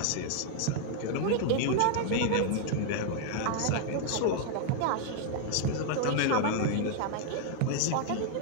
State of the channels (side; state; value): both; different; correlation 0.00